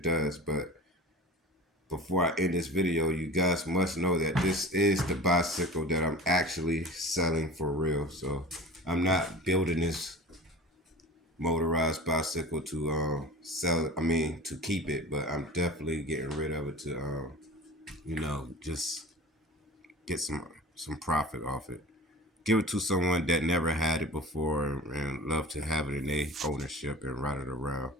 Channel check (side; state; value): both; normal; correlation 0.38